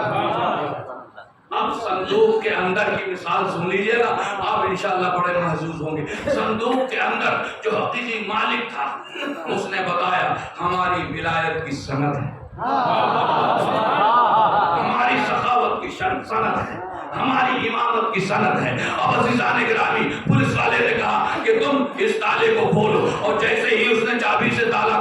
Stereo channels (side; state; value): both; identical; correlation 1.00